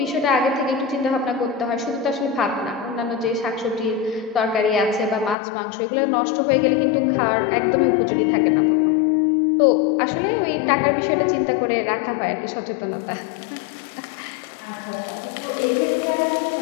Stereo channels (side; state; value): right; drops out; at 5.4 s